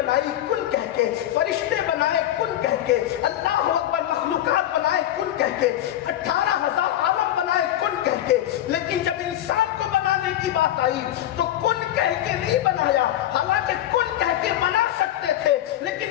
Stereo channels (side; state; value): right; quieter; 12.6 dB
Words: کن کہہ کے، فرشتے بنائے کن کہہ کے، اللہ اکبر، مخلوقات بنائے کن کہہ کے، 18,000 عالم بنائے کن کہہ کے، لیکن جب انسان کو بنانے کی بات آئی تو کن کہہ کے نہیں بنایا، حالانکہ کن کہہ کے بنا سکتے تھے،